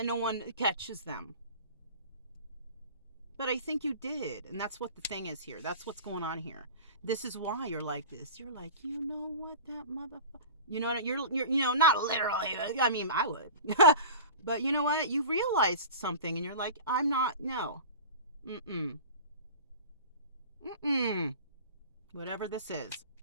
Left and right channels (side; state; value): both; inverted; correlation -0.36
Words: no one catches them. But I think you did, and that's what the thing is here. That's what's going on here. This is why you're like this. You're like, you know what, that motherfucker. You know what? You're you know, not literally. I mean, I would. But you know what? You realized something, and you're like, I'm not. No. Mm-mm. Mm-mm. Whatever this is,